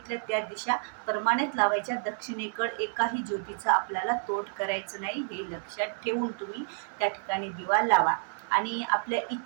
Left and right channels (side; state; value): left; silent; 58 dB below the other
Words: त्या दिशा प्रमाणित लावायच्या. दक्षिणेकडे एकाही ज्योतीचा आपल्याला तोड करायचं नाही, हे लक्षात ठेवून तुम्ही त्या ठिकाणी दिवा लावा आणि आपल्या